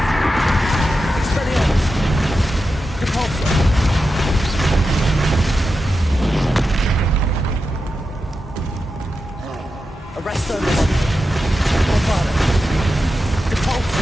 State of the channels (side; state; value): both; normal; correlation 0.90